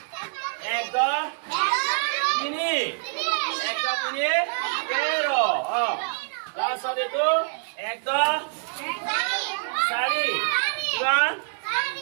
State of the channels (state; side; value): silent; left; 61 dB below the other